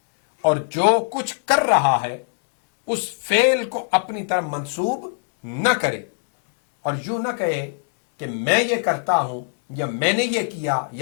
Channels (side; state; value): right; silent; digital silence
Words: اور جو کچھ کر رہا ہے اس فعل کو اپنی طرف منسوب نہ کرے، اور یوں نہ کہے کہ میں یہ کرتا ہوں یا میں نے یہ کیا